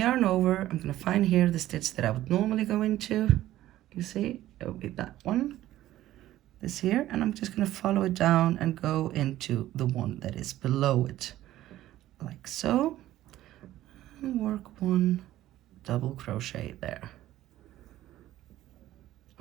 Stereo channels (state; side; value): quieter; left; 14.3 dB